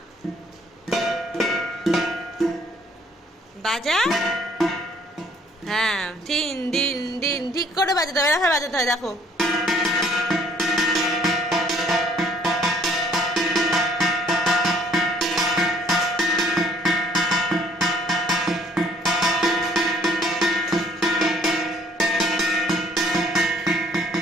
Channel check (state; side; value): normal; both; correlation 0.60